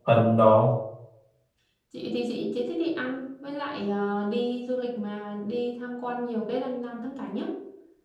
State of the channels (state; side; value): identical; both; correlation 1.00